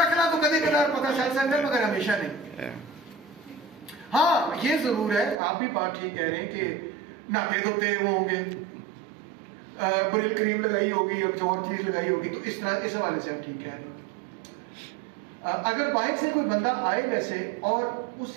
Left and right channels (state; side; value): drops out; left; at 5.4 s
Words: तो कभी कदार पता चल सकता है मगर हमेशा नहीं। हाँ, ये जरूर है, आप भी बात ठीक कह रहे हैं कि नाते धोते वो होंगे, ब्रिल क्रीम लगाई होगी या कुछ और चीज लगाई होगी, तो इस तरह इस हवाले से आप ठीक कह रहे हैं। अगर बाइक से कोई बंदा आए वैसे और